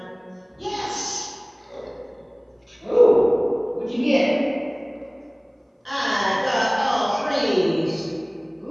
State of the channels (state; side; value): identical; both; correlation 1.00